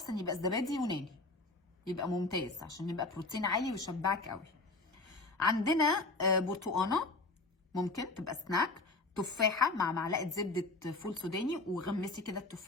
يبقى الزبادي يوناني يبقى ممتاز عشان يبقى بروتين عالي ويشبعك قوي. عندنا برتقانه ممكن تبقى سناك، تفاحه مع معلقه زبده فول سوداني، وغمسي كده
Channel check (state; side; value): quieter; right; 3.2 dB